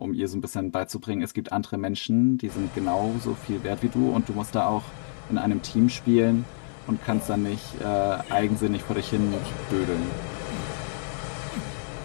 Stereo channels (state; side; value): silent; right; digital silence